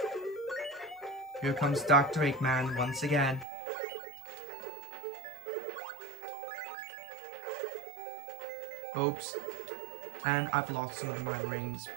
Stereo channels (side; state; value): left; drops out; at 3.5 s